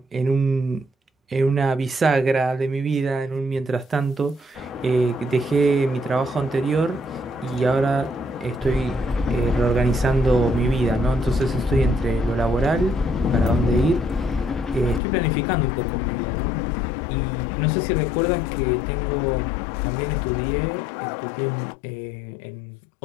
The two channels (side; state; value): right; drops out; at 15.0 s